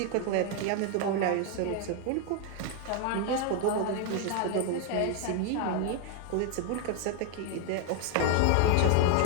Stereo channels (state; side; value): different; both; correlation 0.00